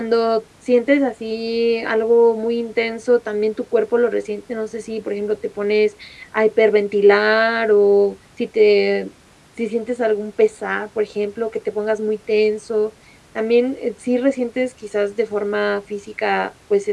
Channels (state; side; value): identical; both; correlation 1.00